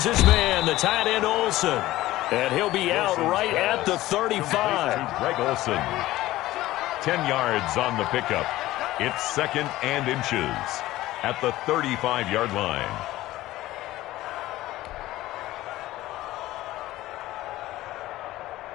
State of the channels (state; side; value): quieter; right; 16.4 dB